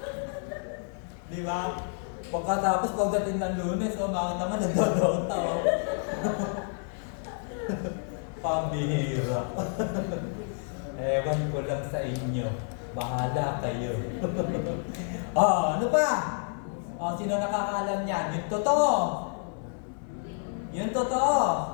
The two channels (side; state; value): right; silent; 55 dB below the other